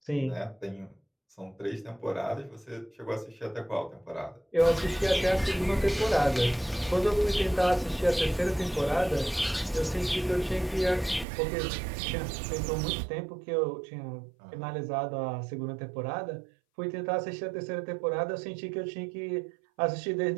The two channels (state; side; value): drops out; left; at 11.2 s